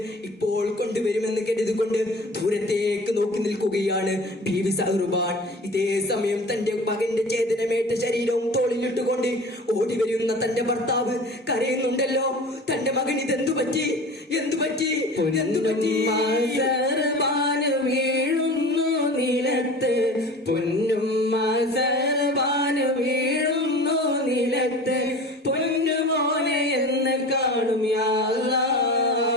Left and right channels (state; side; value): normal; both; correlation 0.38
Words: ഇപ്പോൾ കൊണ്ടുവരുമെന്ന് കരുതിക്കൊണ്ട് ദൂരത്തേക്ക് നോക്കി നിൽക്കുകയാണ് ബീവി സഹറുബാൻ. ഇതേ സമയം തന്റെ മകന്റെ ചേതനമേറ്റ ശരീരവും തോളിലിട്ടുകൊണ്ട് ഓടി വരുന്ന തന്റെ ഭർത്താവ് കരയുന്നുണ്ടല്ലോ. തന്റെ മകൻ ഇതെന്തു പറ്റി, എന്തു പറ്റി, എന്തു പറ്റി? വീഴുന്നു നിലത്ത്, പൊന്നുമ്മ സർബാന് വീഴുന്നു നിലത്ത്, പൊന്നുമോനെ എന്ന് കാണും യാ